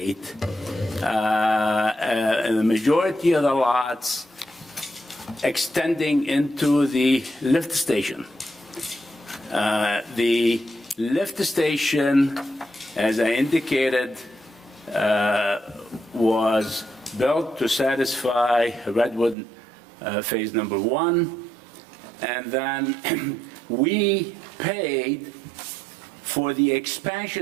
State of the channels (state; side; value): drops out; left; at 19.4 s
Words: the majority of the lots extending into the lift station. The lift station, as I indicated, was built to satisfy Redwood Phase Number 1, and then we paid for the